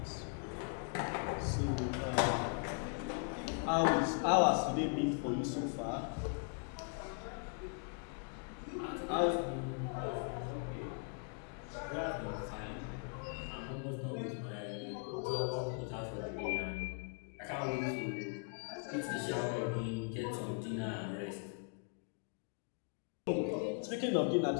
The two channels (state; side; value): quieter; right; 38.5 dB